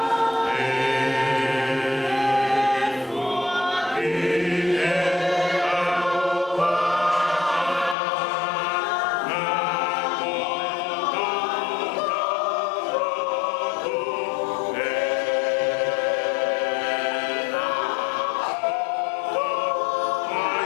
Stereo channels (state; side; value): drops out; right; at 8.0 s